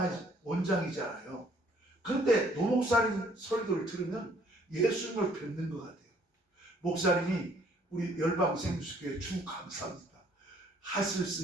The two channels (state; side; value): normal; both; correlation 0.62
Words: 원장이잖아요. 그런데 노 목사님 설교를 들으면 예수님을 뵙는 것 같아요. 목사님이 우리 열방생수교회 주 감사합니다. 하실